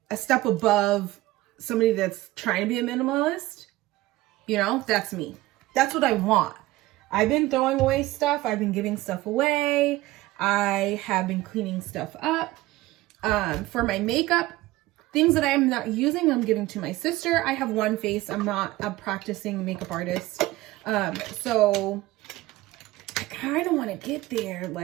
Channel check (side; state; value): left; quieter; 17.9 dB